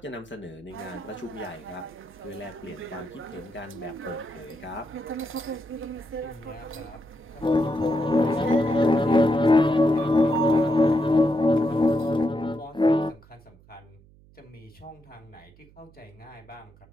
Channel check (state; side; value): noise; right; hum, 26 dB below the sound